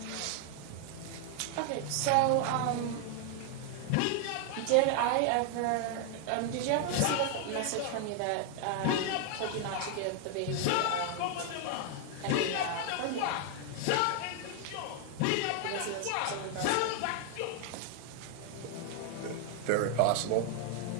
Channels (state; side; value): different; both; correlation 0.00